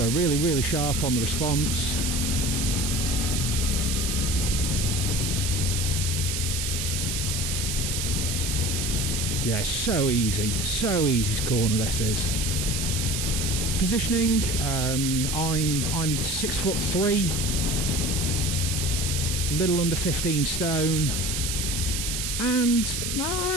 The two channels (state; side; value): noise; right; hiss, 2 dB below the sound